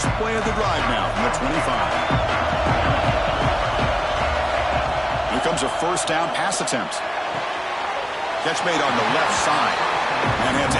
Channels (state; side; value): identical; both; correlation 1.00